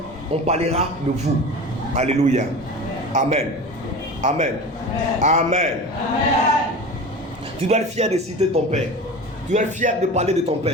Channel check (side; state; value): both; normal; correlation 0.33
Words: on parlera de vous. Alléluia. Amen. Amen. Amen. Tu dois être fier de citer ton père. Tu dois être fier de parler de ton